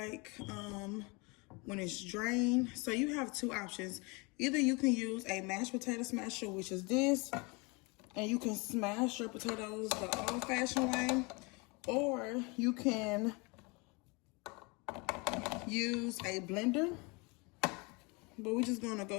when it's drained. So you have 2 options. Either you can use a mashed potato smasher, which is this, and you can smash your potatoes the old-fashioned way, or you can use a blender. But we're just gonna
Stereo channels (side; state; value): right; quieter; 28.5 dB